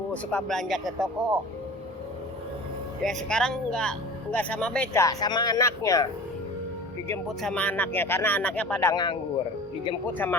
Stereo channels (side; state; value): both; normal; correlation 0.38